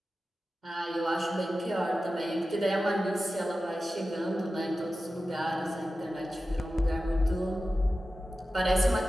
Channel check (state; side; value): normal; both; correlation 0.94